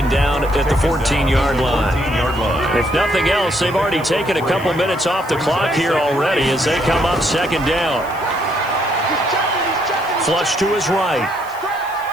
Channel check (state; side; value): noise; right; hiss, 22 dB below the sound